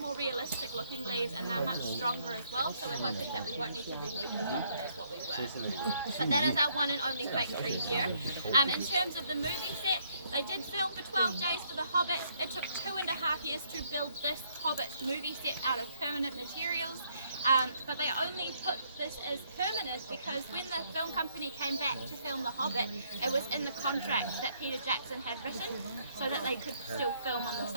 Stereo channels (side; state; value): both; inverted; correlation -0.69